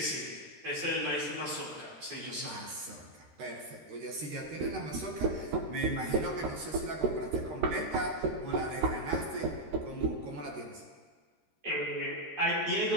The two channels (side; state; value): left; late; 13 ms